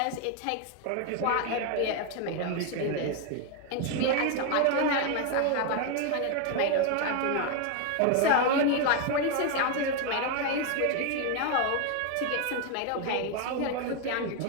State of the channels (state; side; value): different; both; correlation 0.01